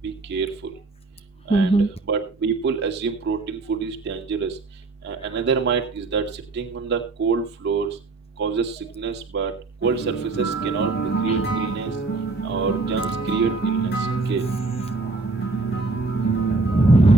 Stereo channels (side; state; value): left; quieter; 3.5 dB